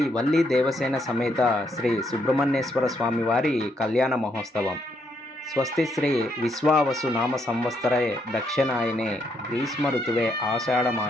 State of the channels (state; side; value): normal; both; correlation 0.75